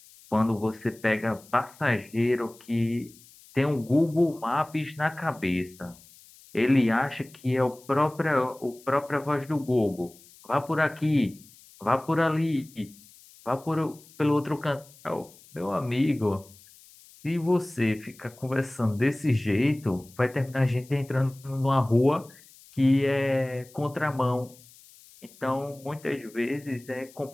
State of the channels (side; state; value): left; noise; hiss, 24 dB below the sound